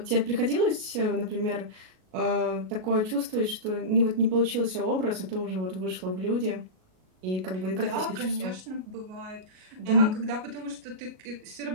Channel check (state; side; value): late; left; 38 ms